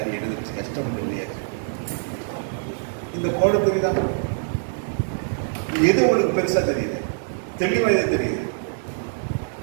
எழுதுச்சு கஷ்டம் இல்லையா. இந்த கோடு தெரியுதா? எது உங்களுக்கு பெருசா தெரியுது, தெளிவா எது தெரியுது?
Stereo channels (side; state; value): left; silent; 63 dB below the other